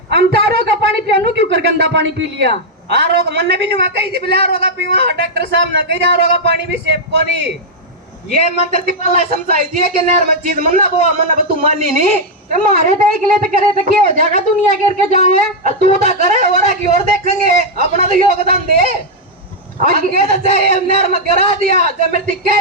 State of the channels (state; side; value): normal; both; correlation -0.02